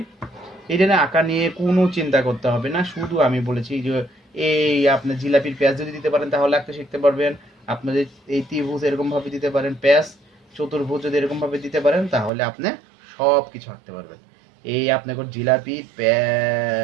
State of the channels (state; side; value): drops out; left; at 12.3 s